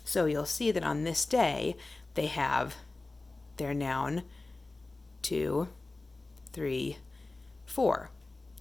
So you'll see that on this day, they have their noun 2, 3, 4.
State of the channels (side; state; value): right; quieter; 3.2 dB